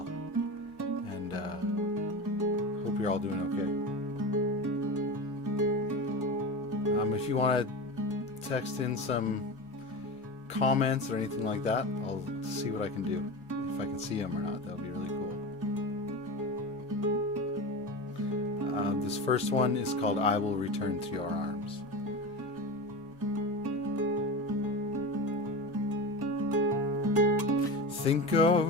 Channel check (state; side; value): normal; both; correlation 0.26